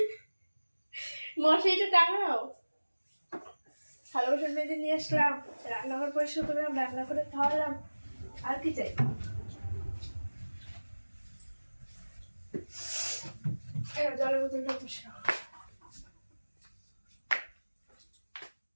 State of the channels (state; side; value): inverted; both; correlation -1.00